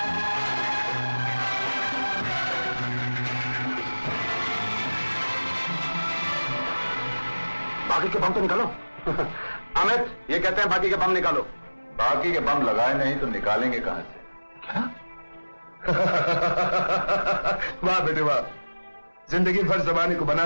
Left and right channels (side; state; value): both; inverted; correlation -1.00